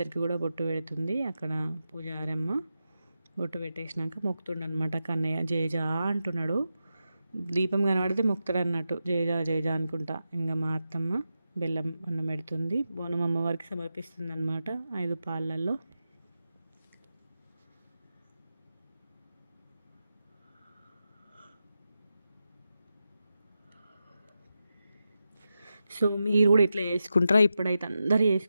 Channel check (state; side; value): inverted; both; correlation -0.90